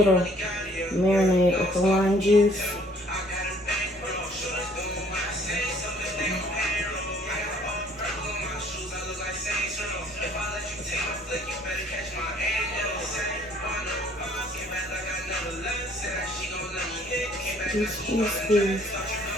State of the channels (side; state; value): both; normal; correlation 0.59